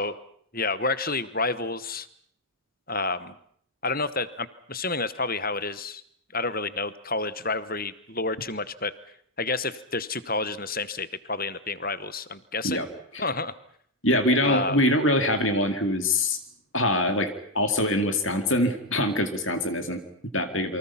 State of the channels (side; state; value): both; normal; correlation 0.02